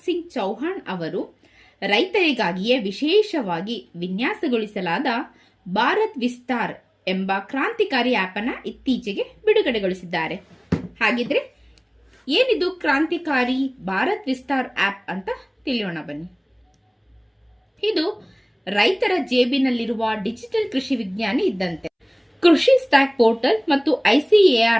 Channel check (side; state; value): both; identical; correlation 1.00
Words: ಸಿಂಗ್ ಚೌಹಾಣ್ ಅವರು ರೈತರಿಗಾಗಿಯೇ ವಿಶೇಷವಾಗಿ ವಿನ್ಯಾಸಗೊಳಿಸಲಾದ ಭಾರತ್ ವಿಸ್ತಾರ್ ಎಂಬ ಕ್ರಾಂತಿಕಾರಿ ಆಪ್ ಅನ್ನು ಇತ್ತೀಚೆಗೆ ಬಿಡುಗಡೆಗೊಳಿಸಿದ್ದಾರೆ. ಹಾಗಿದ್ರೆ ಏನಿದು ಕ್ರಾಂತಿಕಾರಿ ಭಾರತ್ ವಿಸ್ತಾರ್ ಆಪ್ ಅಂತ ತಿಳಿಯೋಣ, ಬನ್ನಿ. ಇದು ರೈತರ ಜೇಬಿನಲ್ಲಿರುವ ಡಿಜಿಟಲ್ ಕೃಷಿ ವಿಜ್ಞಾನಿ ಇದ್ದಂತೆ. ಕೃಷಿ ಸ್ಟ್ಯಾಕ್ ಪೋರ್ಟಲ್ ಮತ್ತು